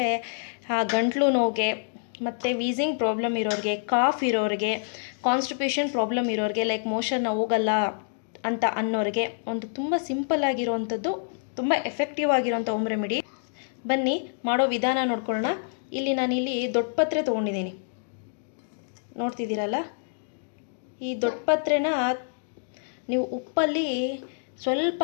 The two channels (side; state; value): right; silent; digital silence